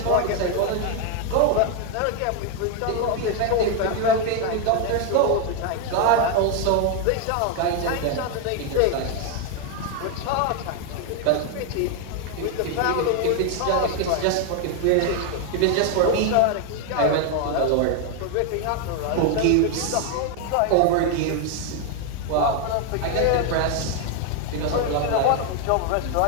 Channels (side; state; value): both; different; correlation 0.01